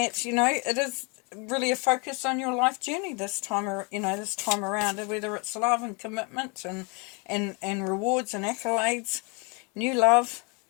it is really a focus on your life journey this time around, whether it's love and commitment and rewards and accolades, new love,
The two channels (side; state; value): right; quieter; 32.0 dB